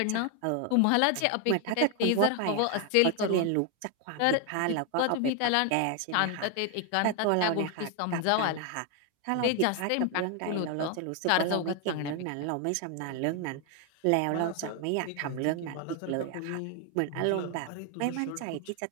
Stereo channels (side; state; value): both; different; correlation 0.01